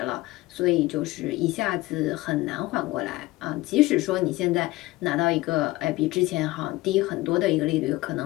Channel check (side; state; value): right; quieter; 19.4 dB